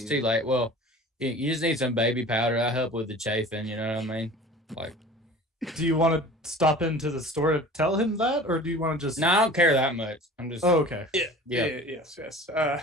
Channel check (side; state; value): both; normal; correlation 0.41